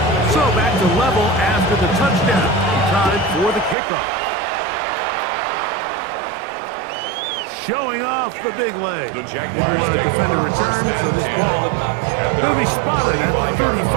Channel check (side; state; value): left; drops out; at 3.8 s